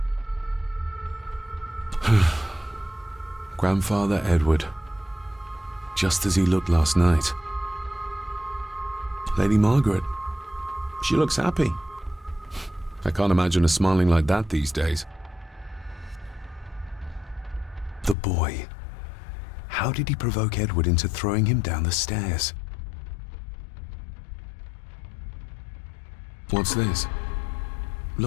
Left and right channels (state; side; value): drops out; right; at 18.2 s